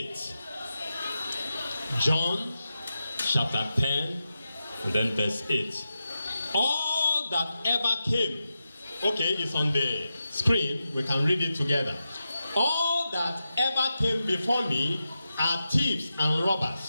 John chapter 10 and then verse 8. All that ever came, okay, it's on the screen, we can read it together. All that ever came before me are thieves and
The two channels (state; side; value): inverted; both; correlation -0.90